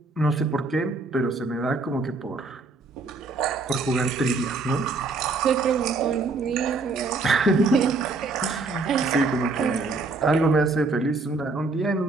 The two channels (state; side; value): quieter; left; 3.7 dB